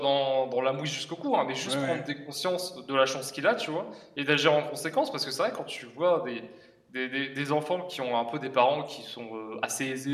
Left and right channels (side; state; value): both; identical; correlation 1.00